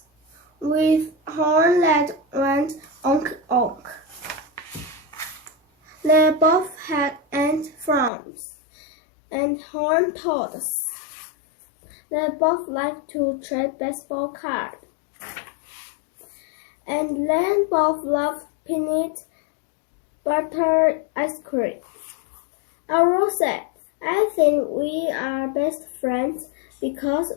with horns that went onk onk. They both had ant farms and horned toads. They both liked to trade baseball cards. And they both loved peanut butter ice cream. Arrow said, "I think we are best friends because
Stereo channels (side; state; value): right; drops out; at 8.1 s